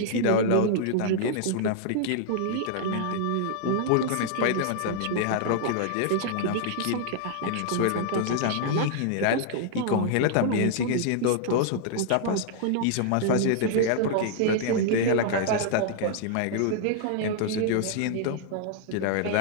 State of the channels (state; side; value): different; both; correlation -0.01